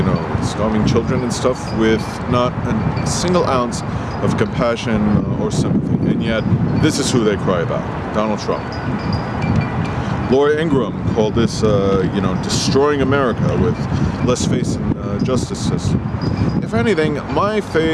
starving children and stuff, with not a single ounce of compassion or sympathy. And yet, this is who they cry about, Donald Trump. Laura Ingraham called this, destroying America with less faith in the justice system. If anything, my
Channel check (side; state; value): both; identical; correlation 1.00